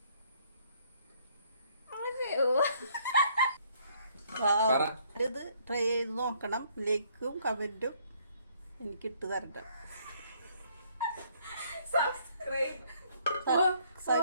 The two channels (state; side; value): inverted; both; correlation -0.65